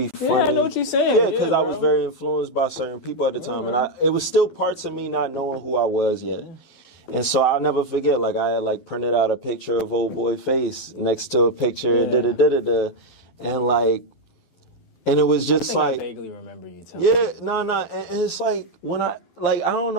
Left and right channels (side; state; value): right; late; 12 ms